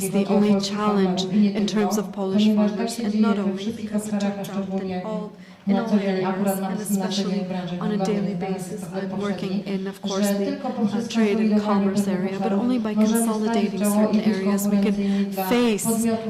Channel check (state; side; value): identical; both; correlation 1.00